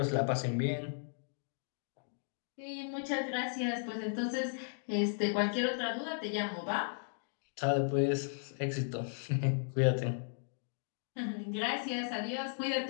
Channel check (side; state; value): right; silent; digital silence